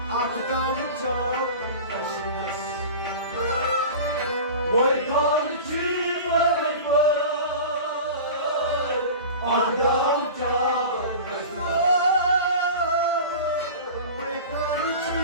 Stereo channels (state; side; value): inverted; both; correlation -0.34